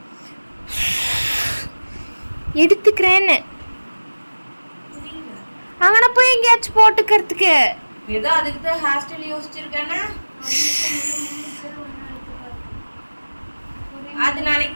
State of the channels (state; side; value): inverted; both; correlation -1.00